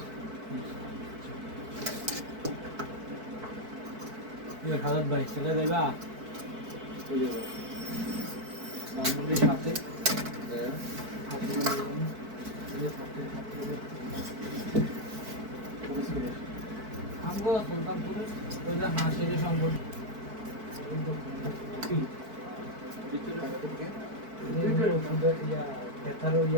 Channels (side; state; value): left; late; 4.6 ms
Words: হাজার ভাই ছেলে দেবা বাঙালির সাথে আমগো সুলতানপুরে ওই যে হাসির সম্পর্ক